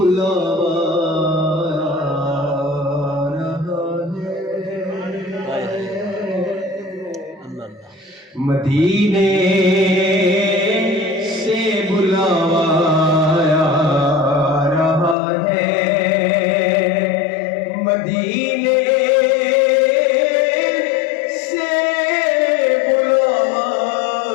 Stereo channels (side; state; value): right; drops out; at 15.2 s